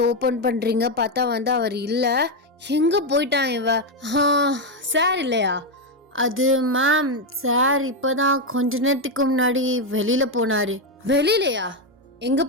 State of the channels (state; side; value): normal; both; correlation 0.05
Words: ஓப்பன் பண்ணுறீங்க. பார்த்தா அவர் இல்லை. எங்கே போயிட்டான் இவ? சார் இல்லையா? அது மேம், சார் இப்போ தான் கொஞ்ச நேரத்துக்கு முன்னாடி வெளியில் போனார். வெளியிலையா? எங்கே